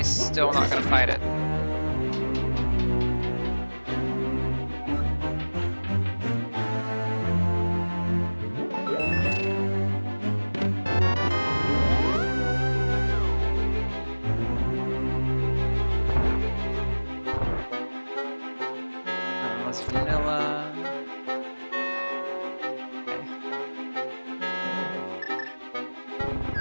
still not gonna fight it. Let's vanilla.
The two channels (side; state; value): both; inverted; correlation -1.00